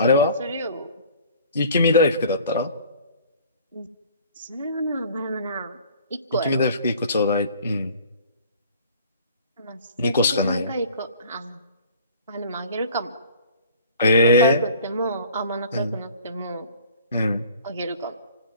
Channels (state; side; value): inverted; both; correlation -0.49